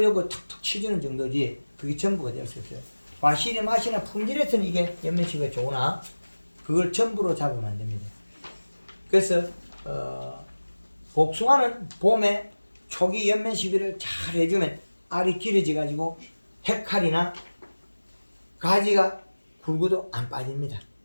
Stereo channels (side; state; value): both; inverted; correlation -1.00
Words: 툭툭 치주는 정도지 그게 전부가 될 수 없어요. 과실의 맛이나 품질에서는 이게 연면시비가 좋으나 그걸 전부로 잡으면 안 됩니다. 그래서 복숭아는 봄에 초기 연면 시비를 잘 해주면 알이 길어져 가지고 헤칼이나 가지가 굵어도 안 빠집니다.